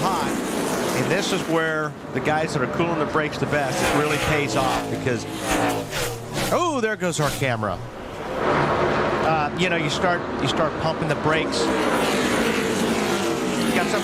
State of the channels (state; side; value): identical; both; correlation 1.00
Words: And this is where the guys that are cooling the brakes the best, it really pays off because, oh, there goes our camera. You know, you start pumping the brakes. You got